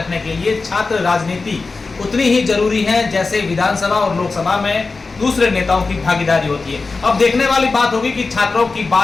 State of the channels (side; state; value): right; quieter; 4.0 dB